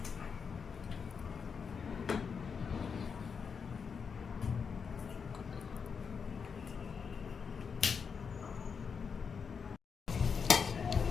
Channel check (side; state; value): right; quieter; 6.1 dB